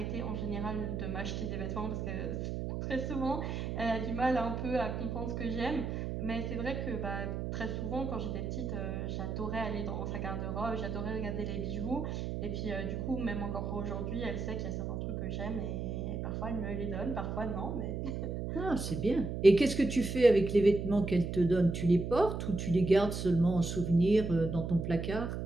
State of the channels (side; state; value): right; noise; hum, 3 dB below the sound